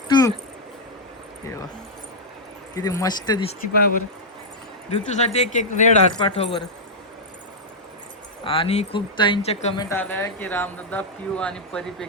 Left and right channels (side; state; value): both; normal; correlation -0.06